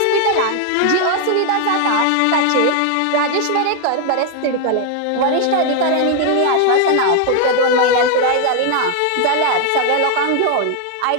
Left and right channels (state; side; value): different; both; correlation 0.00